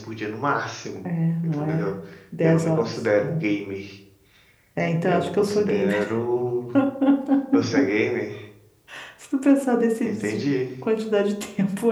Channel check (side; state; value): both; identical; correlation 1.00